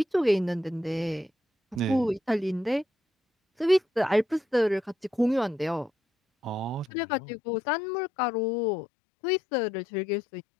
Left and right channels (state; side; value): drops out; right; at 6.9 s